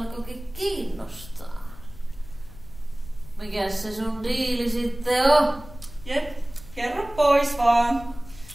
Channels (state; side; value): noise; left; rumble, 17 dB below the sound